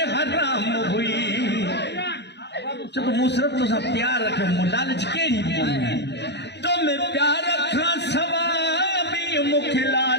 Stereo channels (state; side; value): late; right; 0.50 ms